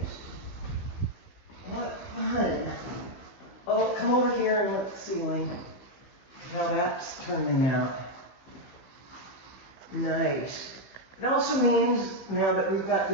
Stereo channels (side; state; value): right; late; 15 ms